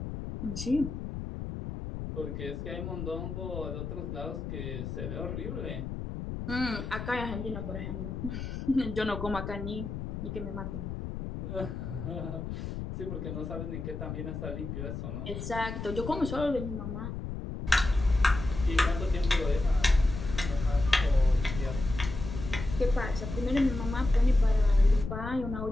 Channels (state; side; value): noise; left; rumble, 6 dB below the sound